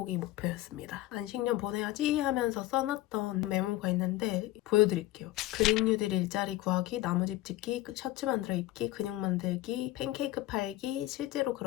목표였습니다. 안식년 보내야지 하면서 써놨던 메모가 있는데 보여드릴게요. 그린 뉴딜 일자리 구하기, 나무집 짓기, 셔츠 만들어 입기, 근육 만들기, 팬케이크 팔기, 실제로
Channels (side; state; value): right; quieter; 16.4 dB